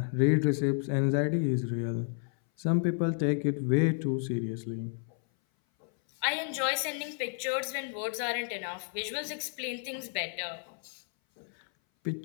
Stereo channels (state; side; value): silent; right; 57 dB below the other